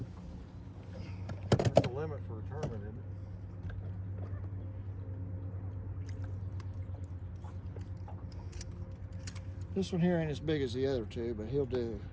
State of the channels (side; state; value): both; identical; correlation 1.00